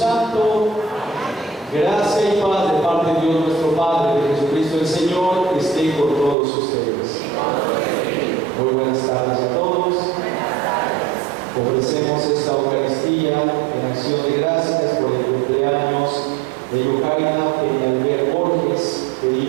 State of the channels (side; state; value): left; drops out; at 6.4 s